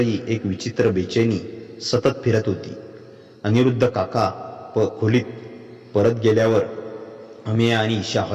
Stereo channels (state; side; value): identical; both; correlation 1.00